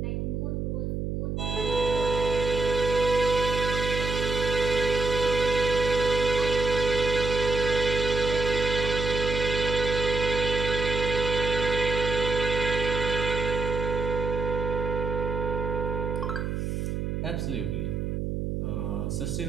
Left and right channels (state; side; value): noise; right; hum, 2 dB below the sound